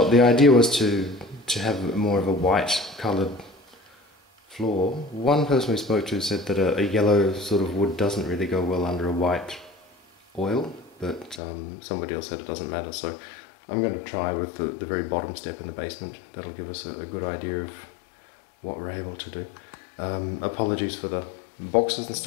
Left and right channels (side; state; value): right; drops out; at 11.4 s